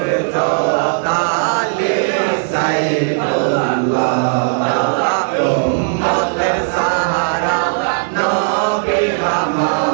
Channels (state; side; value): silent; left; digital silence